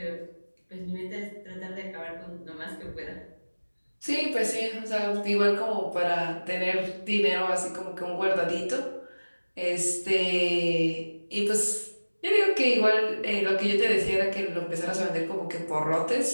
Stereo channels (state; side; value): inverted; both; correlation -1.00